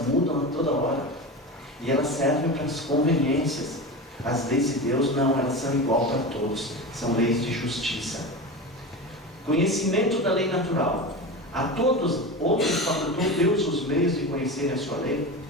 mudam a toda hora. E elas servem para as conveniências. As leis de Deus não, elas são igual para todos, são leis de justiça. Conhecimento da lei natural. A todos, outros facultou Deus os meios de conhecerem a sua lei.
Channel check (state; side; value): normal; both; correlation 0.26